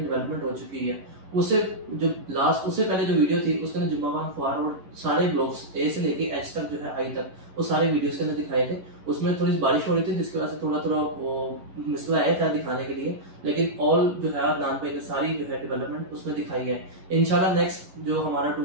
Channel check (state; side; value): late; left; 11 ms